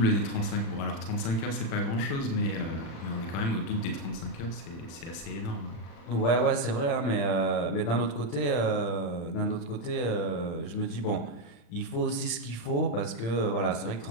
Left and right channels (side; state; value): right; late; 35 ms